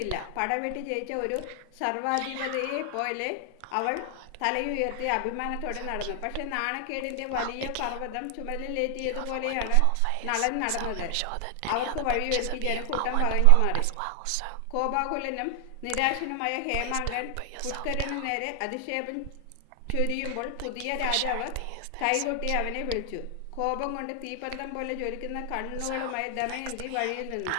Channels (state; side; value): different; both; correlation 0.00